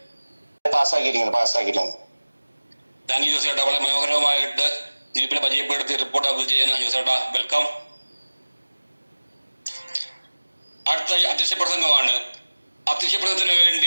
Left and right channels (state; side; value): inverted; both; correlation -1.00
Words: പാസ്സാക്കിയിരിക്കുന്നു. താങ്ക് യു ജോസേട്ടാ. വളരെ മനോഹരമായിട്ട് ദ്വീപിനെ പരിചയപ്പെടുത്തി റിപ്പോർട്ട് അപ്ലോഡ് ചെയ്യുന്ന ജോസേട്ടാ, വെൽക്കം. അടുത്ത അധ്യക്ഷ പ്രസംഗമാണ്. അധ്യക്ഷ പ്രസംഗത്തിന്